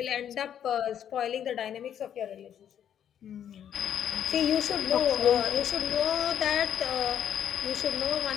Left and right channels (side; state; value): right; quieter; 9.5 dB